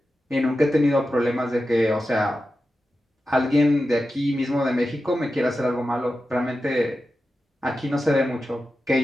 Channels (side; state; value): both; normal; correlation 0.92